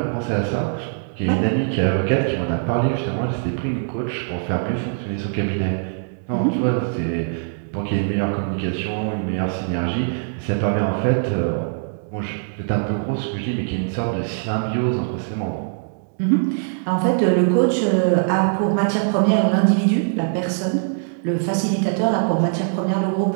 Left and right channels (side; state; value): left; silent; digital silence